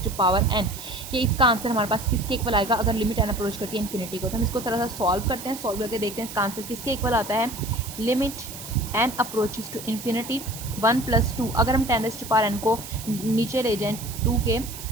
कि इसका आंसर हमारे पास किसके इक्वल आएगा अगर लिमिट n अप्रोच करती है इन्फिनिटी को। तो हम इसको थोड़ा सा सॉल्व करते हैं, सॉल्व करके देखते हैं इसका आंसर किसके इक्वल आता है। Limit n approaches to infinity 1 + 2, अगर हम 10⁻n को नीचे ले जाएँ 2 के,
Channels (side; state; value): right; noise; hiss, 12 dB below the sound